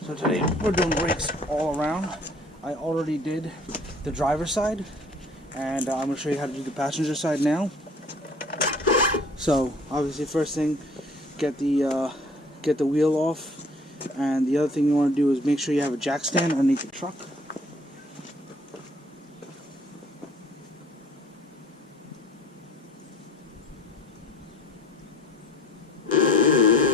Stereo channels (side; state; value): both; normal; correlation 0.54